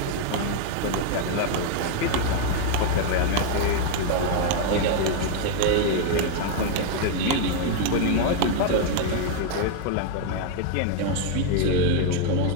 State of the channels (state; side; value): different; both; correlation 0.00